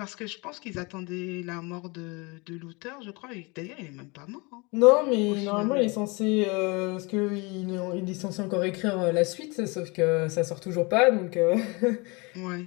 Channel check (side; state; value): right; quieter; 27.9 dB